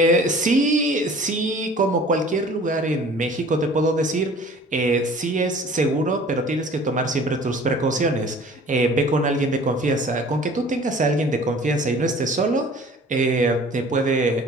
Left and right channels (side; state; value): both; normal; correlation 0.48